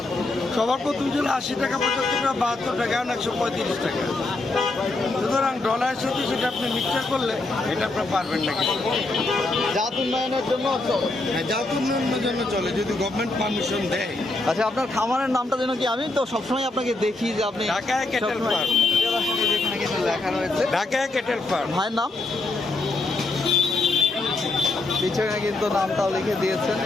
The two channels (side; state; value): right; quieter; 3.1 dB